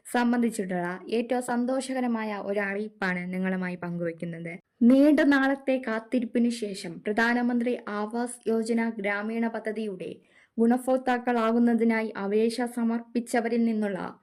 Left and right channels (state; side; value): identical; both; correlation 1.00